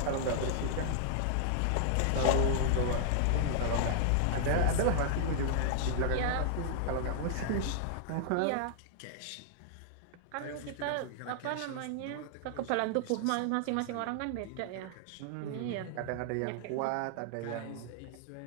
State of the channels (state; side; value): different; both; correlation -0.01